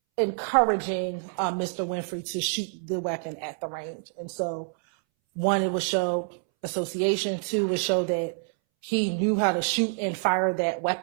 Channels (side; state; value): left; silent; 60 dB below the other